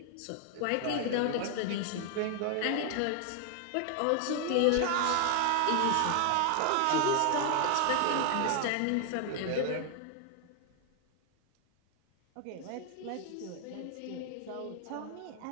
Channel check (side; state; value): both; different; correlation 0.00